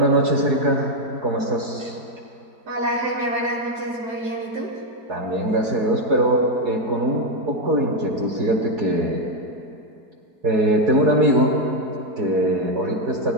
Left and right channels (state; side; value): late; left; 4.7 ms